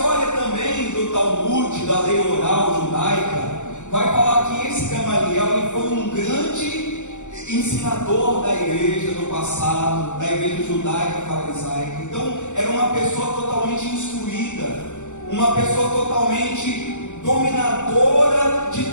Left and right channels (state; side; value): late; right; 0.84 ms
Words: também do Talmud, da lei oral judaica, vai falar que esse Gamaliel ele foi um grande ensinador da igreja no passado, da igreja judaica farisaica. Então era uma pessoa totalmente instruída, uma pessoa totalmente dominadora de